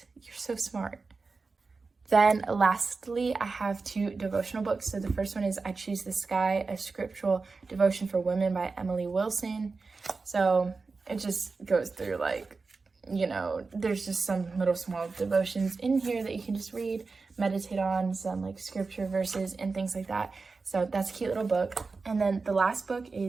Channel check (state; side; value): quieter; left; 4.2 dB